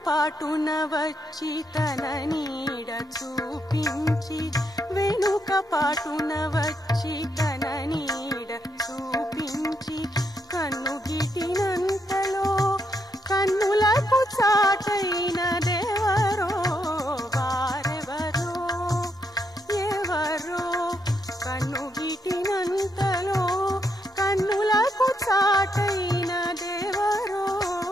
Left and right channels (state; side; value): normal; both; correlation 0.78